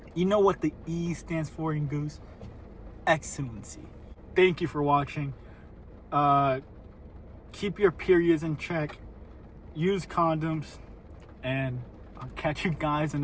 You know what the E stands for in goose? Excellency. Thank you for watching. Keep your periods in check. Use condoms. And I'll catch you guys in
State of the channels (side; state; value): both; identical; correlation 1.00